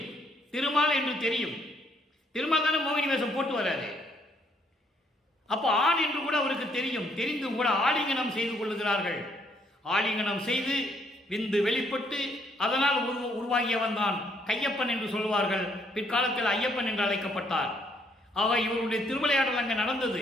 திருமால் என்று தெரியும். திருமால் தானே மோகினி வேஷம் போட்டு வராரு. அப்போ ஆண் என்று கூட அவருக்கு தெரியும். தெரிந்தும் கூட ஆலிங்கனம் செய்து கொள்ளுகிறார்கள். ஆலிங்கனம் செய்து விந்து வெளிப்பட்டு அதனால் உருவாகியவன் தான் கையப்பன் என்று சொல்வார்கள். பிற்காலத்தில் ஐயப்பன் என்று அழைக்கப்பட்டார். ஆக இவருடைய திருவிளையாடல் அங்கே நடந்தது.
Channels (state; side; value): normal; both; correlation 0.69